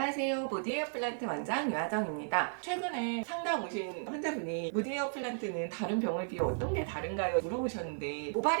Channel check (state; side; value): silent; left; 55 dB below the other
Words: 무디에어 플란트 원장 유하정입니다. 최근에 상담 오신 환자분이 무디에어 플란트는 다른 병을 비해 어떤 게 다른가요? 물어보셨는데